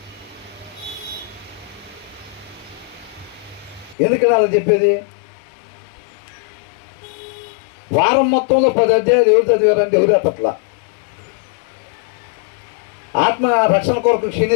ఎందుకని అలా చెప్పేది? వారం మొత్తంలో 10 అధ్యాయాలు ఎవరు చదివారంటే ఎవరు అట్లా. ఆత్మ రక్షణ కొరకు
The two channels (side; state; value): right; drops out; at 4.0 s